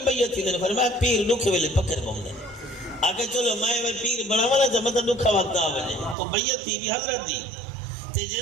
بیعت تھی فرمایا پیر دکھے ویلے پکر بم دیں آکے چلو میں پیر بڑا والا جب مطلب دکھا وقت آوے تو بیعت تھی بھی حضرت دی تے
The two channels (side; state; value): left; drops out; at 6.2 s